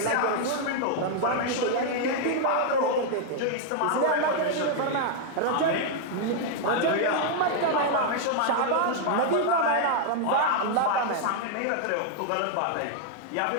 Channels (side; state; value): both; different; correlation 0.00